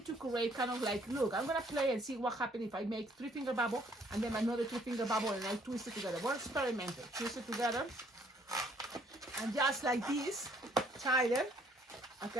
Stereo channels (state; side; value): normal; both; correlation 0.63